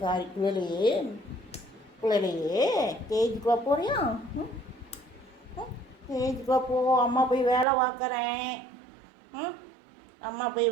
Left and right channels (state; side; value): drops out; left; at 7.7 s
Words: சாரி குழலியே ஸ்டேஜுக்குள்ளே போறியா? ஸ்டேஜுக்குள்ளே போ. அம்மா போய் வேலை பார்க்குறேன். அம்மா போய்